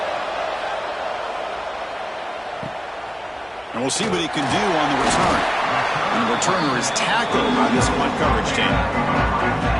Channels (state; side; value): identical; both; correlation 1.00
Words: And we'll see what he can do on the return. And the returner is tackled by this punt coverage team.